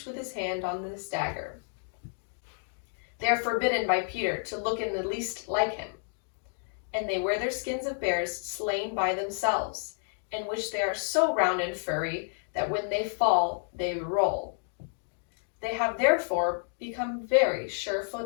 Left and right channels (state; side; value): silent; right; digital silence